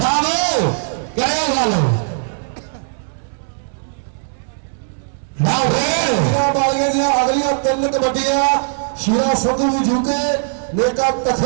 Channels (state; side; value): silent; left; digital silence